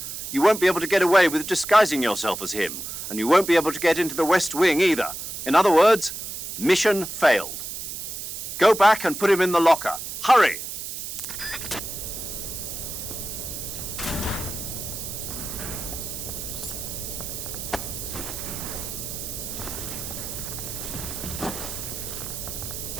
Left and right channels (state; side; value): noise; right; hiss, 7 dB below the sound